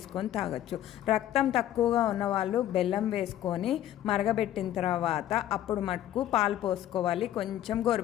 తాగొచ్చు. రక్తం తక్కువగా ఉన్నవాళ్ళు బెల్లం వేసుకొని మరగబెట్టిన తర్వాత అప్పుడు మటుకు పాలు పోసుకోవాలి, కొంచెం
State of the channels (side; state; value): right; quieter; 12.4 dB